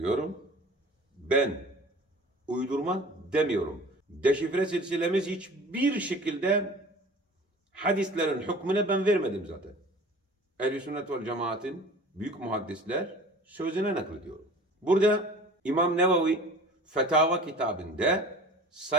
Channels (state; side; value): normal; both; correlation 0.43